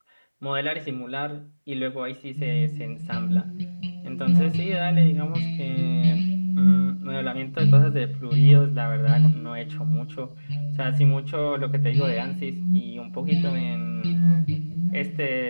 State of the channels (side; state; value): both; inverted; correlation -1.00